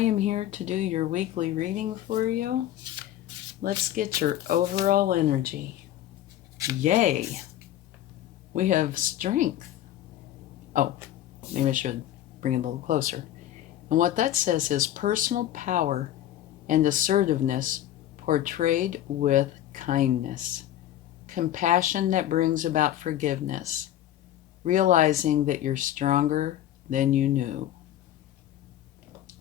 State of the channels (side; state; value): right; quieter; 12.5 dB